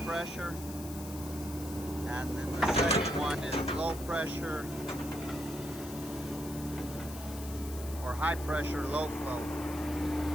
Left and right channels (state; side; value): noise; left; hiss, 13 dB below the sound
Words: pressure. And then the second one is low pressure or high pressure, low flow.